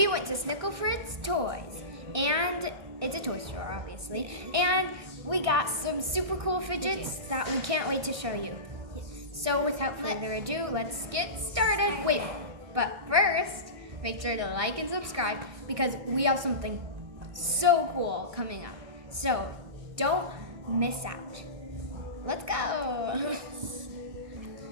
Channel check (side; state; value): left; late; 1.6 ms